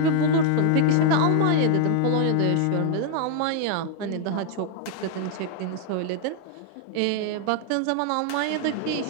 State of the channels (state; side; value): different; both; correlation 0.00